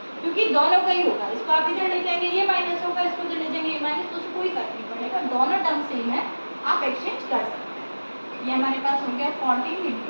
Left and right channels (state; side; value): inverted; both; correlation -1.00